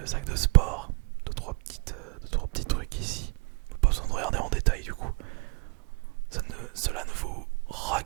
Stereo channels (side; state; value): left; quieter; 30.8 dB